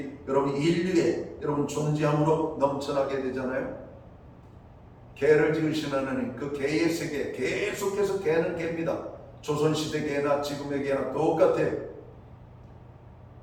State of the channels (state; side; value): identical; both; correlation 1.00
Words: 여러분 인류에 여러분 존재함으로 넘쳐나게 되잖아요. 개를 지으신 하나님 그 개의 세계 계속해서 개는 개입니다. 조선시대 개나 지금의 개나 똑같아요.